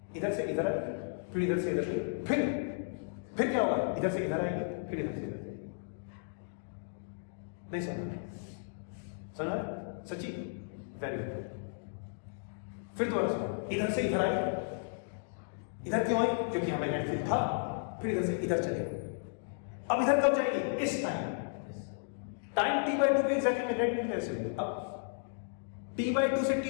इधर से इधर आएगी, फिर इधर से इधर, फिर क्या होगा, इधर से इधर आएगी, फिर इधर से इधर। नहीं समझ सच्ची, वेरी गुड। फिर दोबारा सुनो, इधर से इधर आई, इधर क्यों आई, क्योंकि यहां मैग्नेटिक फील्ड था, फिर इधर से इधर चली। अब इधर कब जाएगी, इस टाइम t/2 पे एग्जैक्टली मैग्नेटिक फील्ड ऐसे। अब t/2 से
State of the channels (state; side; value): silent; right; digital silence